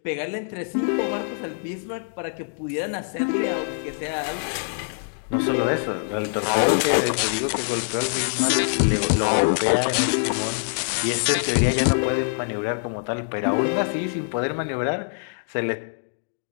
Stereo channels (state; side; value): silent; right; digital silence